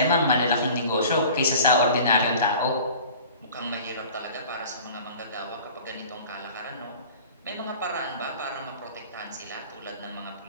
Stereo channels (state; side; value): inverted; both; correlation -0.43